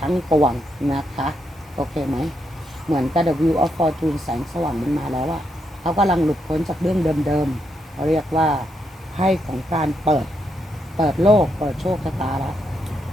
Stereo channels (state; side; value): normal; both; correlation 0.80